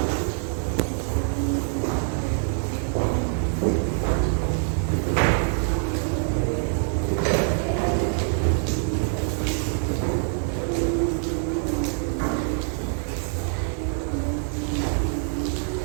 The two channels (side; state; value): left; silent; 58 dB below the other